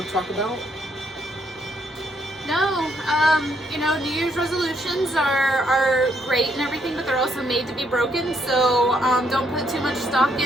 to talk about? No, you know, New Year's resolutions are great and everything, but they're also made to be broken, so don't put too much stock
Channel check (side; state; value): both; normal; correlation 0.73